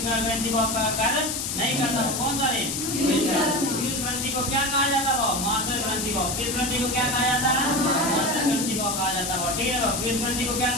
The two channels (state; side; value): noise; left; hiss, 2 dB below the sound